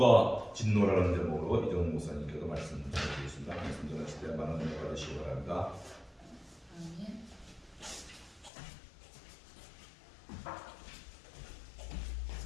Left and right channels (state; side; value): drops out; right; at 8.5 s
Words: 진노라는 제목으로 이정 목사님께서 말씀 전해주셨습니다. 말씀 전하실 때 많은 은혜 받으시기 바랍니다. 아멘.